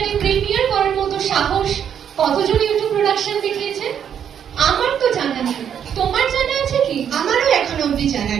প্রিমিয়ার করার মতো সাহস কতজন ইউটিউব প্রোডাকশন দেখিয়েছেন? আমার তো জানা নেই, তোমার জানা আছে কি? আমারও এখনো অব্দি জানা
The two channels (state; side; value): quieter; left; 8.7 dB